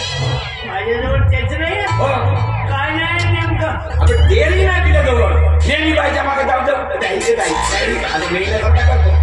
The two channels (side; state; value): both; identical; correlation 1.00